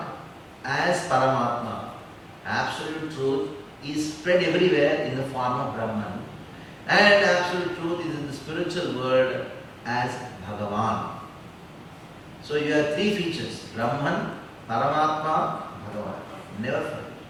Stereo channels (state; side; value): identical; both; correlation 1.00